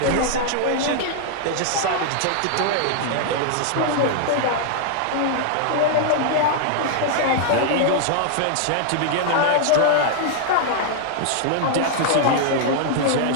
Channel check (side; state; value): both; different; correlation 0.00